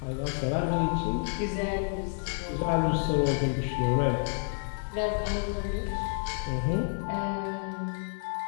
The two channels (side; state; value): right; silent; 57 dB below the other